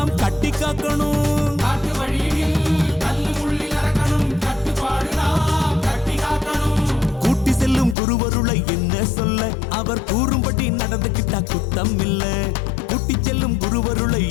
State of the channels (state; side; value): drops out; right; at 8.0 s